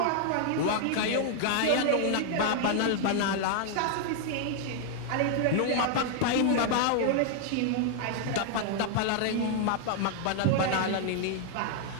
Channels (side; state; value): both; different; correlation 0.00